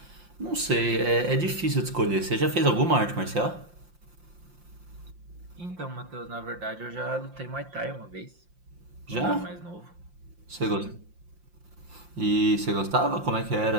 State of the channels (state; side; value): late; left; 5.7 ms